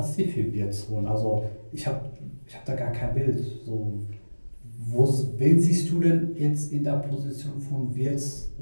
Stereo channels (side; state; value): both; inverted; correlation -1.00